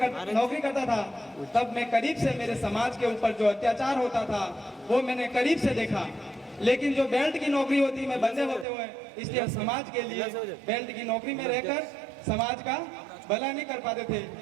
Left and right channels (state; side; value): drops out; left; at 8.7 s